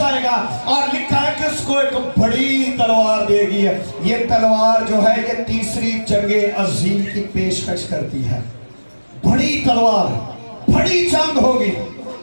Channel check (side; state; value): both; inverted; correlation -1.00